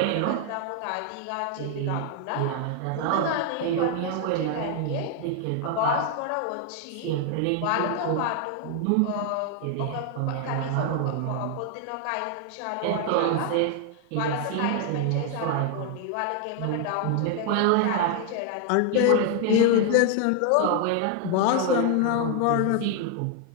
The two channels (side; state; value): both; different; correlation 0.00